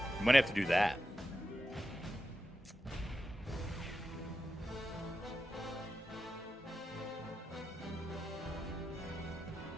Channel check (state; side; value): normal; both; correlation 0.89